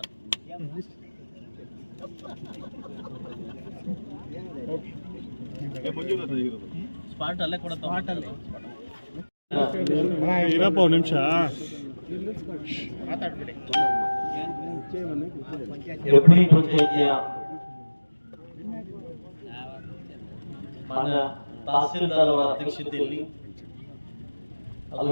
ಸ್ಪಾಟ್ ಅಲ್ಲೇ ಕೊಡ ಇರಪ್ಪ ಒಂದು ನಿಮಿಷ ಮಾತಾಡ್ಬಿಡಿ. ಹೆಬ್ಳಿ ಪಂಚಾಯಿತಿಯ ಮಾನ್ಯ ತಹಸೀಲ್ದಾರ್ ಅವರ ಅಧ್ಯಕ್ಷತೆಯಲ್ಲಿ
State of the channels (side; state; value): both; inverted; correlation -1.00